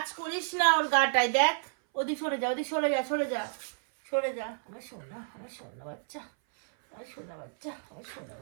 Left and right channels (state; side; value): silent; left; 57 dB below the other